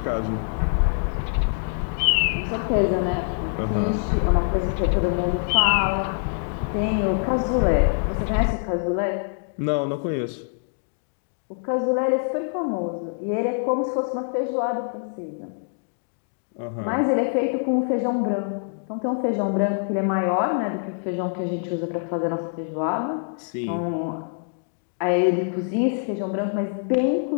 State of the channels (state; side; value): silent; right; digital silence